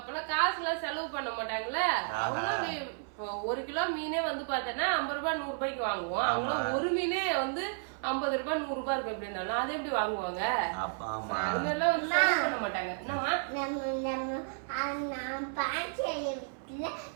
காசு எல்லாம் செலவு பண்ண மாட்டாங்களே. ஒரு கிலோ மீனே வந்து பாத்தேன்னா 50 ரூபாய் 100 ரூபாய்க்கு வாங்குவோம். அவங்க ஒரு மீனே வந்து 50 ரூபாய் 100 ரூபாய் இருக்கு. எப்படி இருந்தாலும் அதை எப்படி வாங்குவாங்க? பண்ண மாட்டாங்க.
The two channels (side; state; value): left; silent; 56 dB below the other